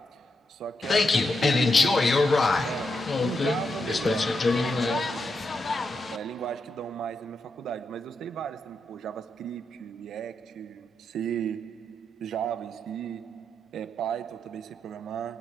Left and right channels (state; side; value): normal; both; correlation 0.83